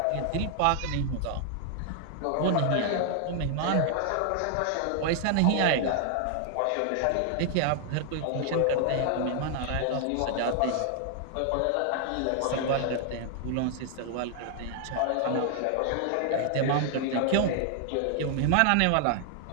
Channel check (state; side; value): different; both; correlation 0.00